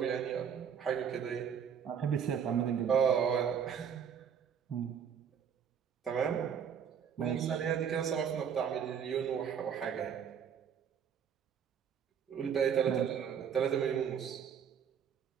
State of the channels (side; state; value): left; quieter; 7.8 dB